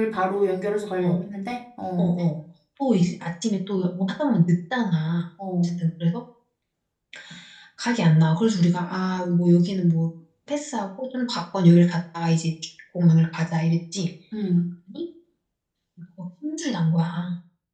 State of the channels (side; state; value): both; identical; correlation 1.00